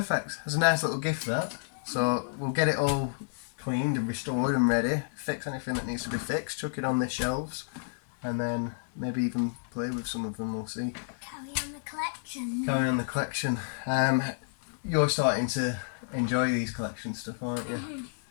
That's a nice little gift, that. So we'll get it all cleaned and restored and ready. Fix anything that needs to be fixed. Chuck it on the shelves, and then maybe even play with some of them. We'll see. Carry on the collection. Carry on the collection. You're starting to enjoy these collection stuff, aren't you?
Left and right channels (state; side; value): silent; right; 58 dB below the other